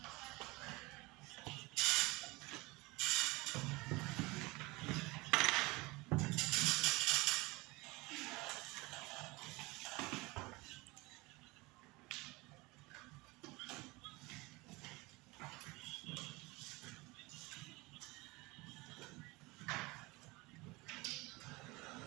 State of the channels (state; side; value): quieter; left; 23.4 dB